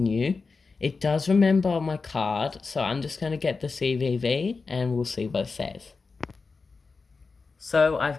It does remember my card, so I'm just going to get the CVV and we'll see what it says. So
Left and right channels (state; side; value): quieter; right; 4.4 dB